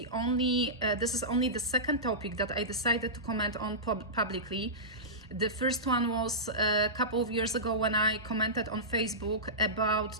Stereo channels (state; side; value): normal; both; correlation -0.17